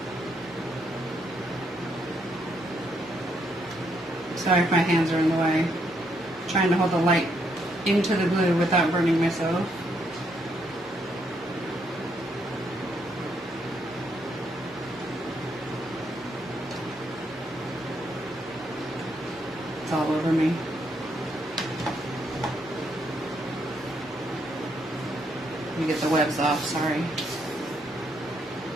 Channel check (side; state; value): both; normal; correlation 0.75